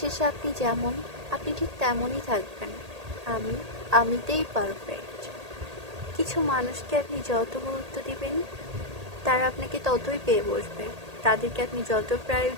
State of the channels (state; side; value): late; left; 1.8 ms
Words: আপনি যেমন, আপনি ঠিক তেমনই থাকবেন। আমি আমিতেই পারফেক্ট। কিছু মানুষকে আপনি যত গুরুত্ব দিবেন, তারা আপনাকে ততই পেয়ে বসবে। তাদেরকে আপনি যত